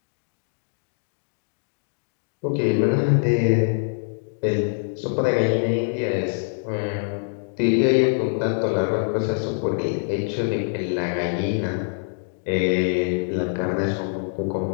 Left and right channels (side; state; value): right; silent; digital silence